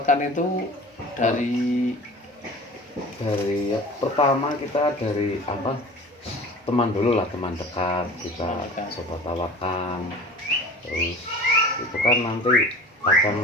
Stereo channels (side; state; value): both; normal; correlation 0.40